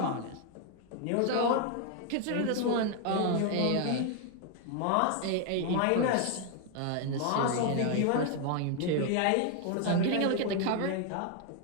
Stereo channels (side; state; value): both; different; correlation 0.00